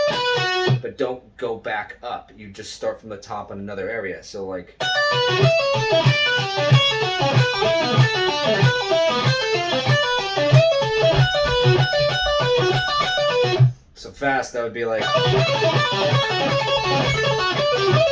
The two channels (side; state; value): both; identical; correlation 1.00